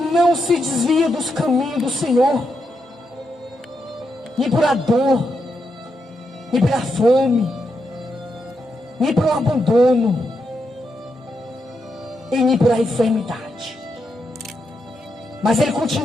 se desvia dos caminhos do Senhor, nem por a dor, nem pela fome, nem pelo abandono, e nem por a enfermidade. Mas ele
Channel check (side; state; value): both; normal; correlation 0.83